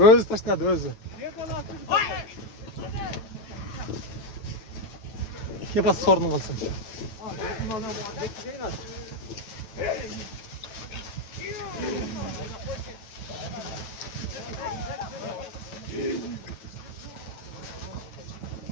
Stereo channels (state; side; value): late; right; 9.1 ms